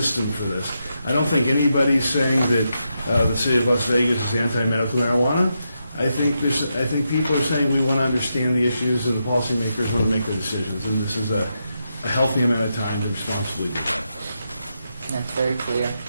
for this. I don't think anybody's saying that the city of Las Vegas is anti-medical marijuana. I think people are saying we want to understand the issues and the policymakers want to make their decisions, and this is a healthy amount of time to responsibly do that. That's very clear.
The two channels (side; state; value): both; inverted; correlation -0.84